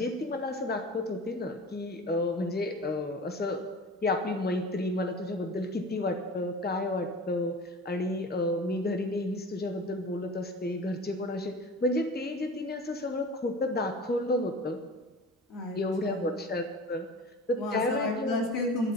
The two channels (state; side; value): normal; both; correlation 0.37